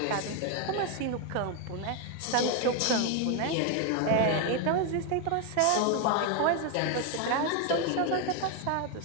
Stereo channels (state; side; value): different; both; correlation 0.01